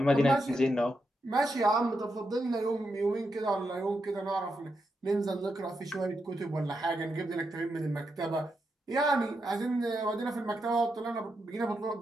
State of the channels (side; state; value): both; normal; correlation 0.84